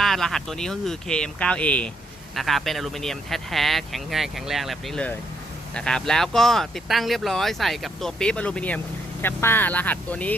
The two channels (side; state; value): both; normal; correlation 0.74